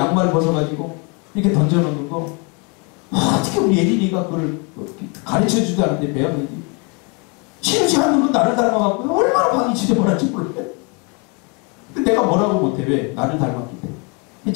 벗어가지고 이렇게 던져놓는 거, 어떻게 우리 예린이가 그걸 가르쳐주지도 않는데 배웠는지, 치우지 않는 건 나를 닮아갖고 얼마나 방이 지저분한지 몰라요. 근데 내가 뭐라고 못해. 왜? 나를 닮았기 때문에.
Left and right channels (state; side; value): quieter; right; 32.9 dB